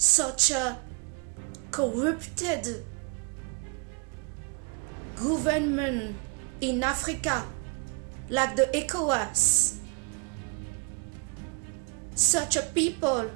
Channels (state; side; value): quieter; left; 34.1 dB